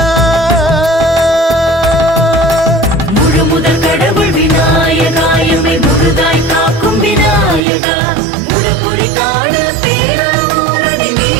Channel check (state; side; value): drops out; left; at 7.6 s